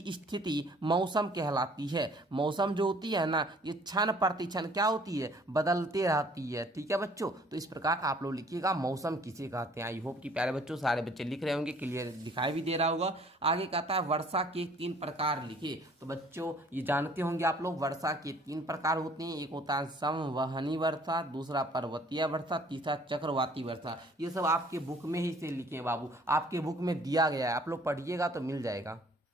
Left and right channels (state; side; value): normal; both; correlation 0.56